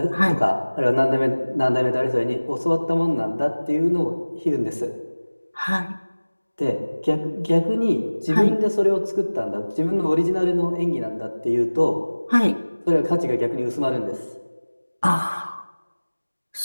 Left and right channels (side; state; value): both; inverted; correlation -1.00